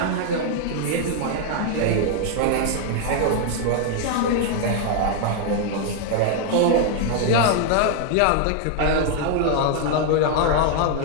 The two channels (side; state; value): both; different; correlation 0.00